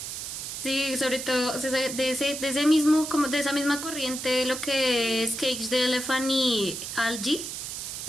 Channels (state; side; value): noise; right; hiss, 6 dB below the sound